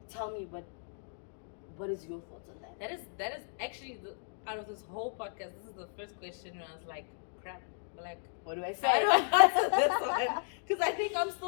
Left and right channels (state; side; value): silent; right; digital silence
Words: tell me what is your thoughts on that? That is actually out of this whole podcast, this is the first question where I was like, crap. Like, what do I say? I don't answer this one because I think I'm